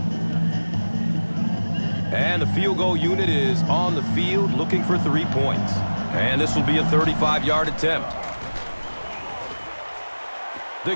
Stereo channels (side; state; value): both; inverted; correlation -1.00